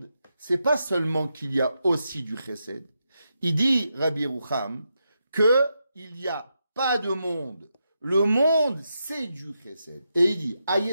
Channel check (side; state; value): both; inverted; correlation -0.85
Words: c'est pas seulement qu'il y a aussi du chesed. Il dit, Rabbi Yerucham, que il n'y a pas de monde. Le monde, c'est du chesed. Et il dit,